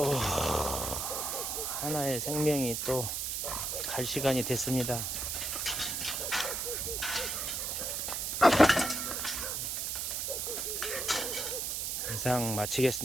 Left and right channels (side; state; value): right; noise; hiss, 1 dB below the sound